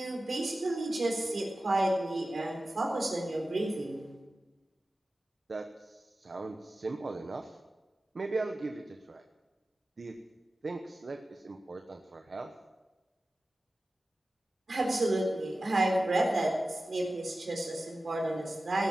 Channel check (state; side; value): normal; both; correlation 0.95